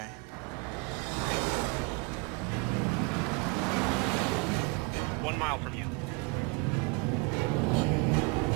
One mile from you.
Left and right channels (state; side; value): quieter; left; 29.1 dB